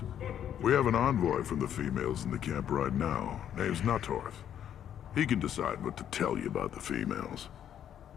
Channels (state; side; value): quieter; right; 9.8 dB